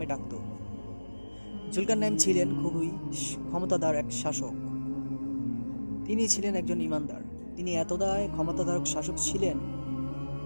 ডাকত। জুলকারনাইন ছিলেন খুবই ক্ষমতাধর এক শাসক। তিনি ছিলেন একজন ইমানদার। তিনি এতটাই ক্ষমতাধারক শাসক ছিলেন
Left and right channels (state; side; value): inverted; both; correlation -1.00